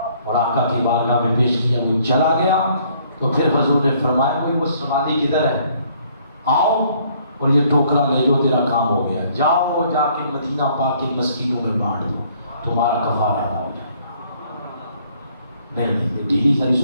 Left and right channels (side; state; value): both; inverted; correlation -0.63